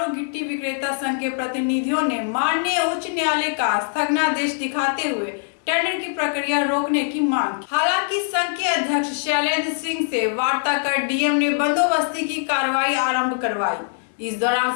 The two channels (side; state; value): right; silent; digital silence